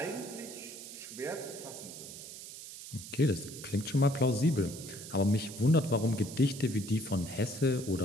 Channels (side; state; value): right; noise; hiss, 12 dB below the sound